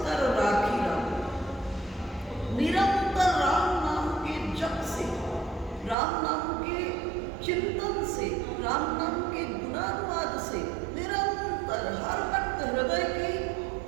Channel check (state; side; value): drops out; left; at 6.0 s